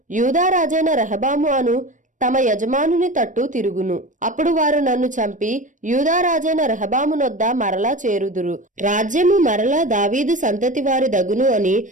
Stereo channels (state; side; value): late; left; 0.37 ms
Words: యూదా రాజైన రెహబాము అను తమ యజమానుని తట్టు తిరుగును. అప్పుడు వారు నన్ను చంపి యూదారాజైన రెహబామునొద్ద మరలా చేరుదురు. రాజ్యము మరలా దావీదు సంతతి వారి దగును అని